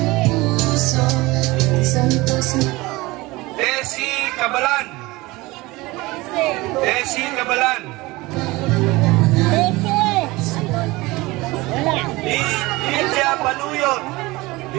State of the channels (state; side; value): quieter; left; 21.4 dB